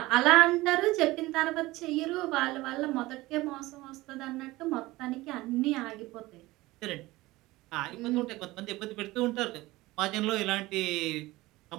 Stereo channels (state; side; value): quieter; left; 19.4 dB